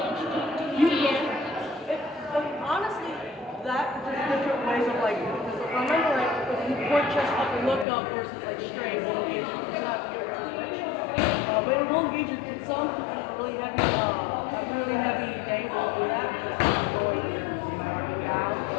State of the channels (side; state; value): right; drops out; at 7.9 s